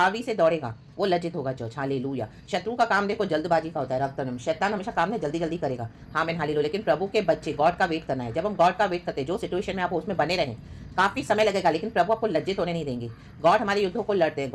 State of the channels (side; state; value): both; identical; correlation 1.00